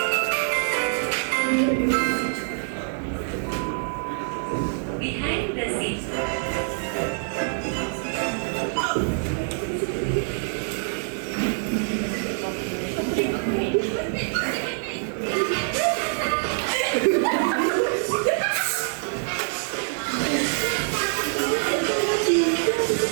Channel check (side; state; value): left; silent; digital silence